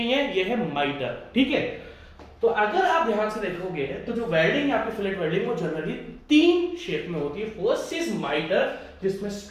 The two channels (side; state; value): both; identical; correlation 1.00